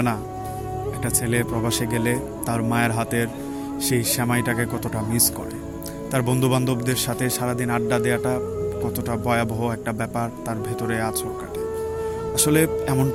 না একটা ছেলে প্রবাসে গেলে তার মায়ের হাতের সেই সেমাইটাকে কতটা মিস করে। তার বন্ধু বান্ধবদের সাথে সারাদিন আড্ডা দেওয়াটা কতটা ভয়াবহ একটা ব্যাপার তার ভেতরে আছর কাটে। আসলে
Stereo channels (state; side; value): identical; both; correlation 1.00